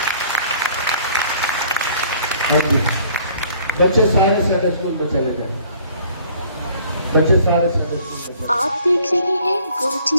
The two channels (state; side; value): inverted; both; correlation -0.56